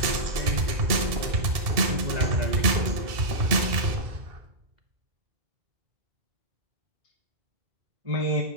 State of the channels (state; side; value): late; left; 2.7 ms